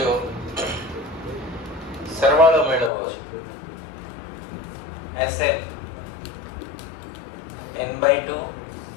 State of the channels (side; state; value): right; drops out; at 2.9 s